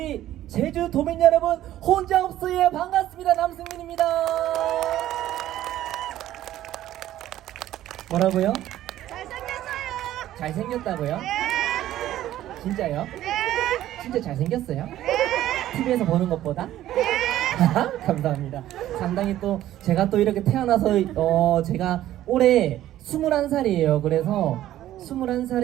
제주 도민 여러분, 혼자 없어요. 반갑습니다. 남승민입니다. 뭐라고요? 잘생겼어요. 잘생겼다고요? 네. 진짜요? 네. 진짜 잘생겼어요? 네. TV에서 보는 것보다? 감사합니다. 상당히 또 제가 또 이렇게 태어나서 제가 올해 21살이에요. 그래서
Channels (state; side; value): quieter; left; 13.4 dB